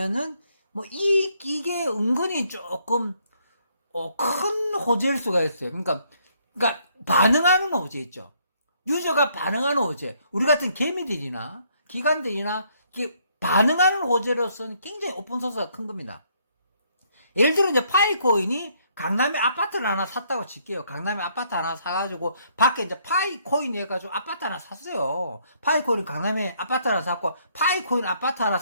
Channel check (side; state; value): both; inverted; correlation -0.69